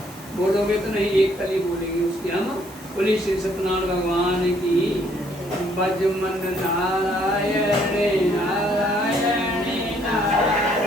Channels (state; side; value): normal; both; correlation 0.66